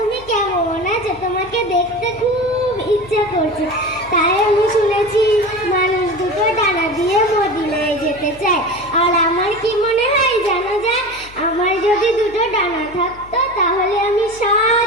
কেমন আছো? তোমাকে দেখতে খুব ইচ্ছা করছে। তাই আমি শুনেছি মানুষ দুটো ডানা দিয়ে মদিনায় যেতে চায়। আর আমার কি মনে হয় জানো যায়, আমার যদি দুটো ডানা থাকতো তাহলে আমি 7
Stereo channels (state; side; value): noise; left; hum, 21 dB below the sound